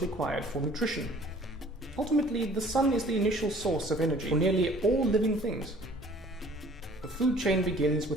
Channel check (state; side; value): normal; both; correlation 0.52